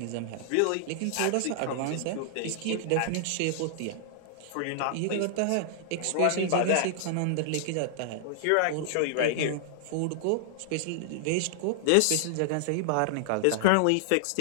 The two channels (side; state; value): both; different; correlation -0.01